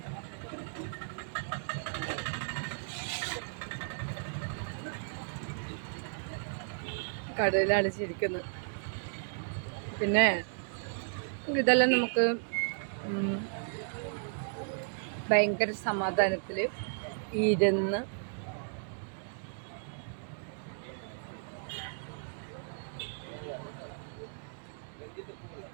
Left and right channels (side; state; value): left; silent; digital silence